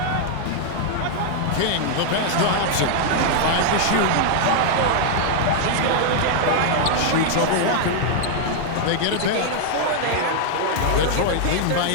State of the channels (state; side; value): different; both; correlation -0.01